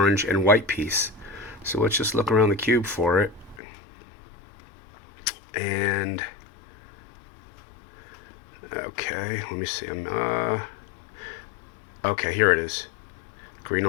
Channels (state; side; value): drops out; right; at 3.6 s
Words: and white piece. So let's just look around the cube for it. And okay, let me see. Okay, here it is. Green,